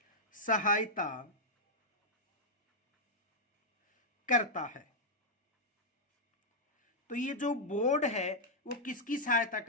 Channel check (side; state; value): both; normal; correlation -0.05